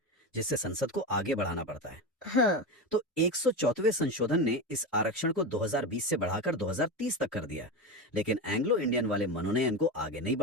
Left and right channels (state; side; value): normal; both; correlation 0.18